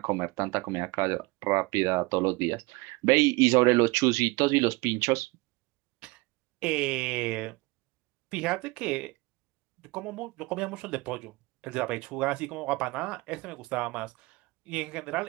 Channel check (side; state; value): left; quieter; 23.8 dB